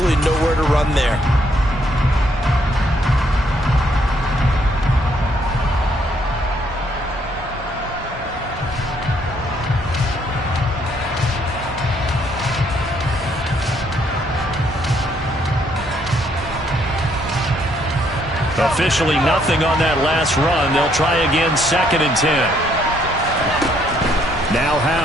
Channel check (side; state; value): both; normal; correlation 0.69